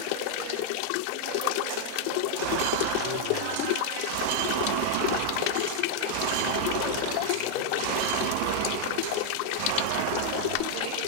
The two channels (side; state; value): both; different; correlation 0.00